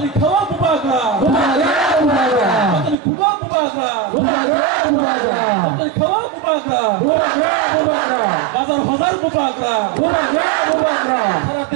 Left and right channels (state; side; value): drops out; left; at 3.0 s